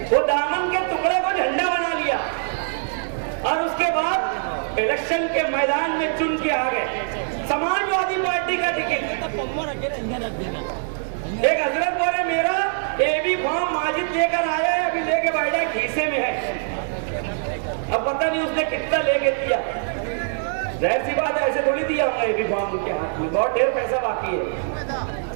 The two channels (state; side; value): silent; left; digital silence